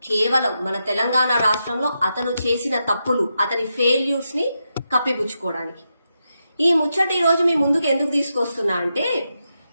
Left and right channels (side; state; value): both; inverted; correlation -0.86